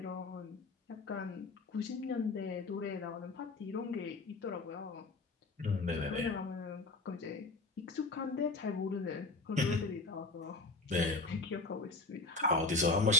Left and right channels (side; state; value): right; quieter; 3.6 dB